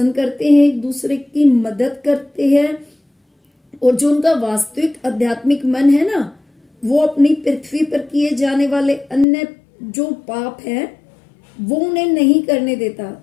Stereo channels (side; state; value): right; drops out; at 9.2 s